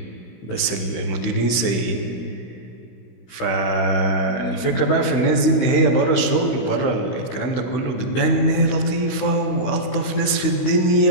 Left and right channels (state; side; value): late; right; 16 ms